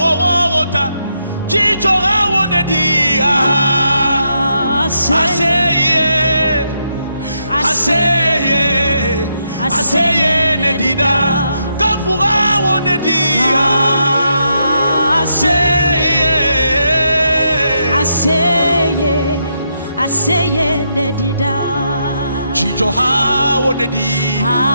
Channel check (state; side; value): inverted; both; correlation -0.79